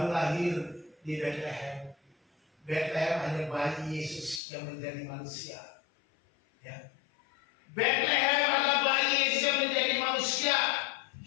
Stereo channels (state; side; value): drops out; right; at 4.4 s